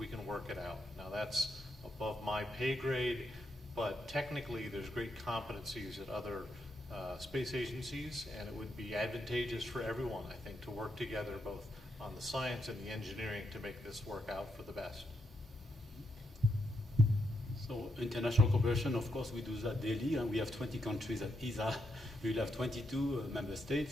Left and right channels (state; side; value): normal; both; correlation 0.80